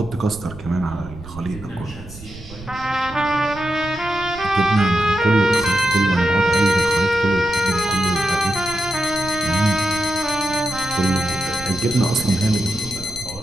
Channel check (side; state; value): right; noise; rumble, 16 dB below the sound